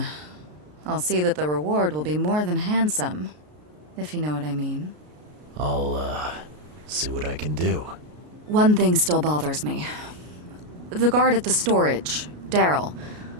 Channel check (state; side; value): late; left; 33 ms